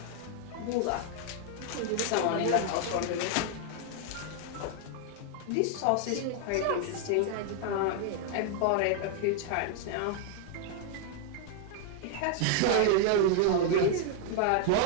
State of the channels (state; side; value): different; both; correlation 0.00